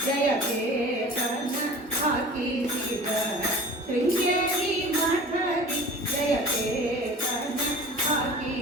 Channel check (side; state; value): both; normal; correlation 0.40